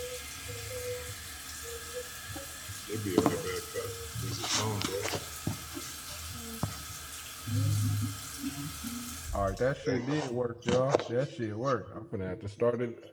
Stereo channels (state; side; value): identical; both; correlation 1.00